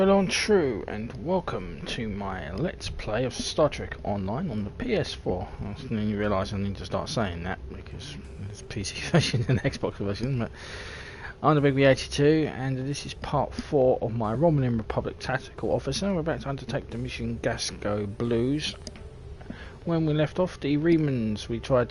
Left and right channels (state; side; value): identical; both; correlation 1.00